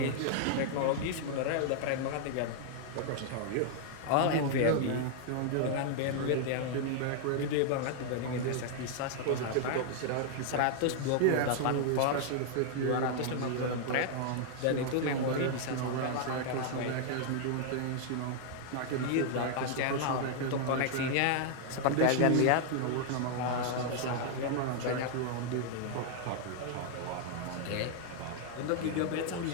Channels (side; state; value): both; different; correlation 0.00